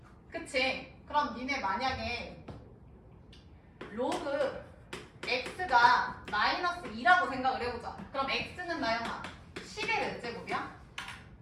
그치? 그럼 니네 만약에 로그 x가 마이너스 2라고 생각을 해보자. 그럼 x는 나영아 10의 몇 제곱이야?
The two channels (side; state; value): both; identical; correlation 1.00